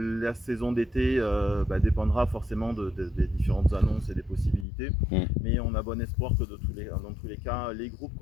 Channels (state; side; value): drops out; right; at 4.7 s